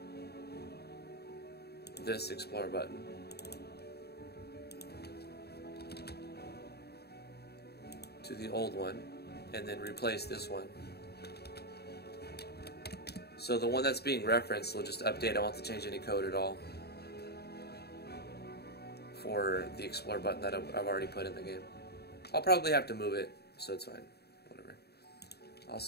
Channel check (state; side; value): late; right; 0.47 ms